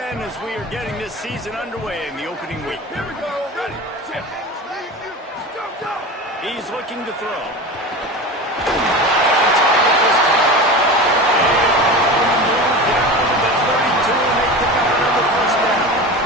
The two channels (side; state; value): both; normal; correlation 0.29